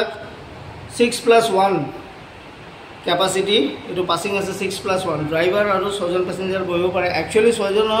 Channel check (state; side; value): identical; both; correlation 1.00